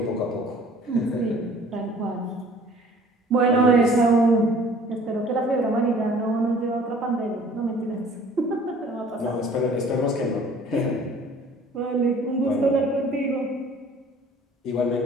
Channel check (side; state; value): both; normal; correlation 0.52